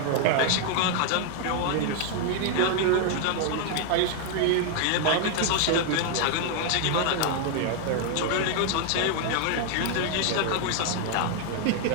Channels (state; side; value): different; both; correlation 0.00